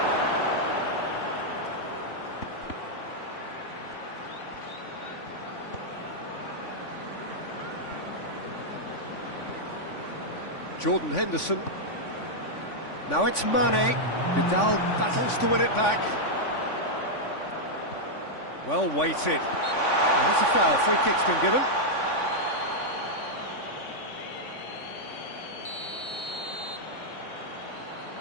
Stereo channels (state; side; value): late; right; 3.5 ms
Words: Jordan Henderson. Now it's Mane. Vidal battles to win it back. Well weighted. There's a foul. Free kick's been given.